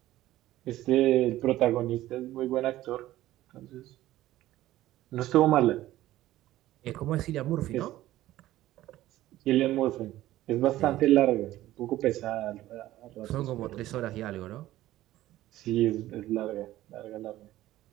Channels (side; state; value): left; quieter; 15.1 dB